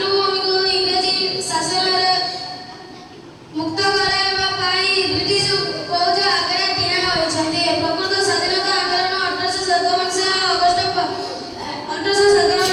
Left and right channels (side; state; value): both; identical; correlation 1.00